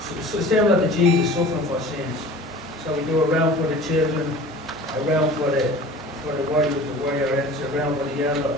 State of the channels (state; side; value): normal; both; correlation 0.41